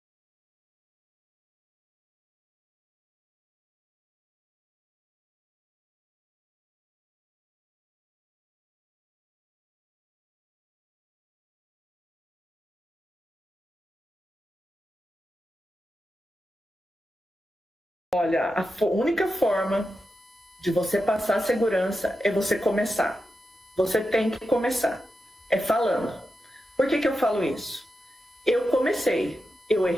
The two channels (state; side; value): normal; both; correlation 0.89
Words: Olha, a única forma de você passar segurança é você começar. Você tem que começar. É falando. Por que eu falo isso? Eu comecei, eu